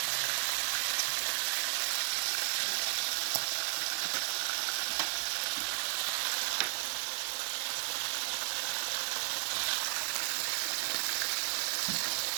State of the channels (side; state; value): left; silent; digital silence